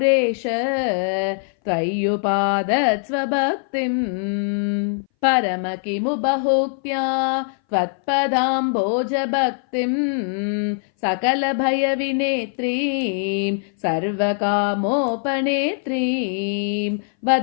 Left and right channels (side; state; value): right; silent; 60 dB below the other